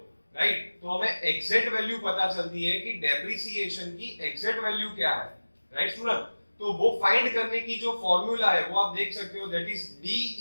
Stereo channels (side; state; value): both; inverted; correlation -1.00